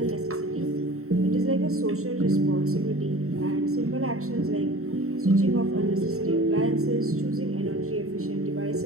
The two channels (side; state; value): left; late; 0.63 ms